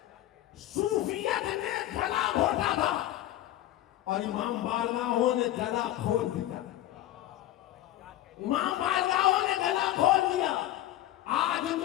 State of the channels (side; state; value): right; quieter; 13.9 dB